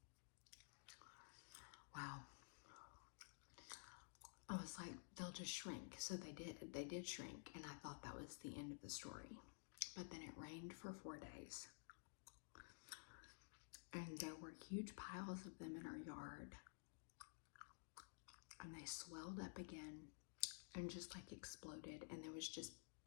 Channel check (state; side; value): silent; right; digital silence